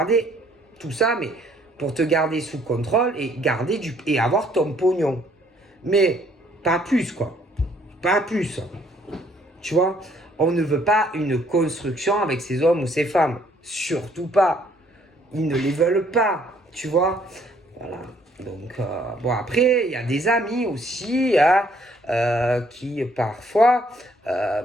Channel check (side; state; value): both; normal; correlation 0.64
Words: tout ça, mais pour te garder sous contrôle et garder et avoir ton pognon, mais pas plus quoi, pas plus. Tu vois, on ne veut pas une construction avec ces hommes ou ces femmes, surtout pas. Ils ne les veulent pas, tu vois. Voilà. Donc, bon, après, il y a des amis aussi hein, qui, parfois,